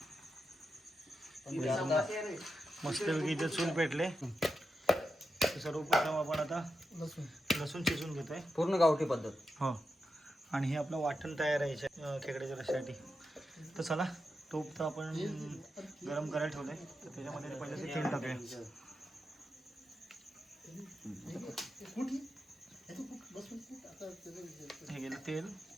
पण ते आता मस्तपैकी इथे चूल पेटले. तर सर्वप्रथम आपण आता लसूण शिजून घेतोय. पूर्ण गावठी पद्धत. हो आणि हे आपलं वाटण तयार आहे खेकड्याच्या रश्श्यासाठी. तर चला तूप तर आपण गरम करायला ठेवलंय, तर त्याच्यामध्ये पहिले ते तेल टाकूया. हे गेलं तेल,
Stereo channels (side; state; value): both; normal; correlation 0.88